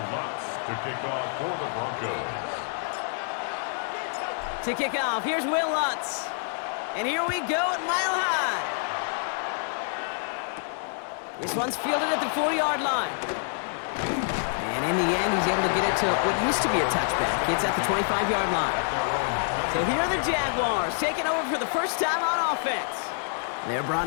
Lutz to kick off for the Broncos. To kick off, here's Will Lutz. And here we go at Mile High. This one's fielded at the 4-yard line. And in the end, he's able to get it to what used to be a touchback. It's at the 25-yard line. So here are the Jaguars taking over for the first time on offense. They're brought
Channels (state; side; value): silent; right; digital silence